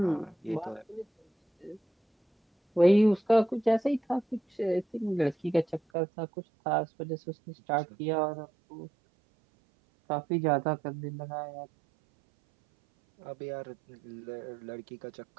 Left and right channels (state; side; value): drops out; left; at 5.8 s